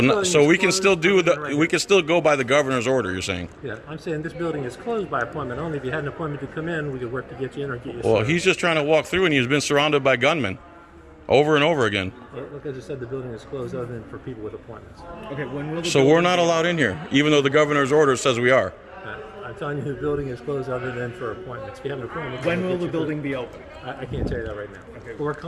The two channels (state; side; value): identical; both; correlation 1.00